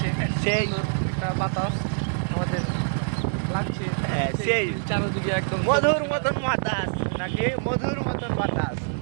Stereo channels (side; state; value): left; silent; digital silence